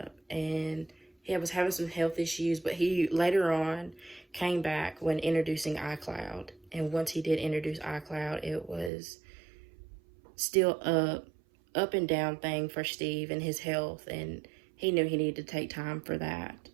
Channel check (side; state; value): left; drops out; at 8.9 s